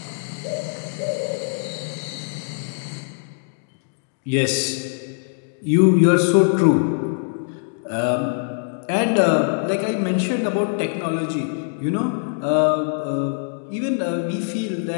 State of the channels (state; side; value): silent; right; digital silence